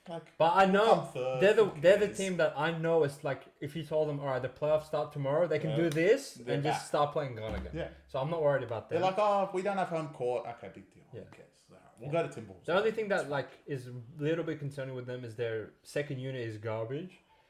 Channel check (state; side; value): identical; both; correlation 1.00